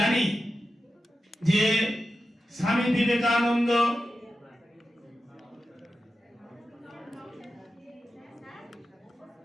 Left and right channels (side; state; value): both; normal; correlation 0.91